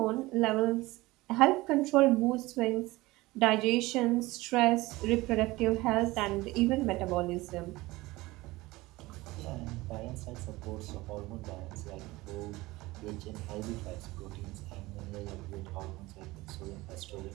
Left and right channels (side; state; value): left; quieter; 20.2 dB